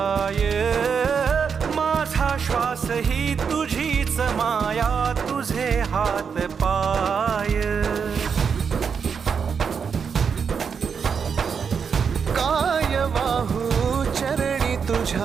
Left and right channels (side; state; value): left; quieter; 6.4 dB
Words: माझा श्वास ही तुझीच माया, तुझे हात पाय. काय वाहू चरणी